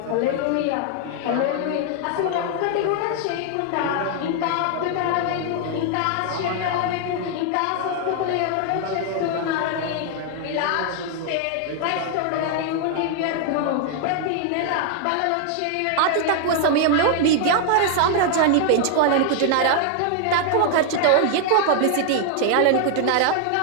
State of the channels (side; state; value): both; different; correlation 0.00